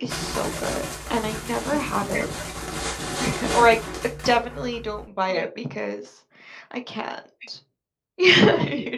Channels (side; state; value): both; identical; correlation 1.00